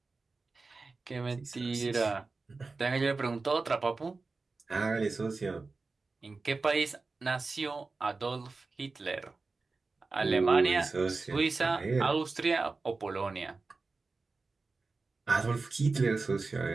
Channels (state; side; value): quieter; left; 3.9 dB